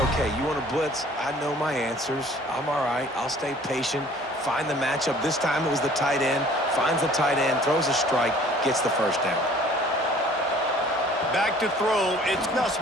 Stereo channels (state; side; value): normal; both; correlation 0.52